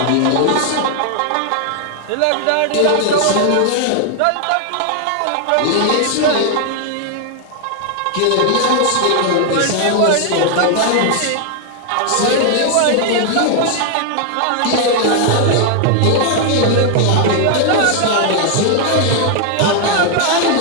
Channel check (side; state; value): both; different; correlation 0.00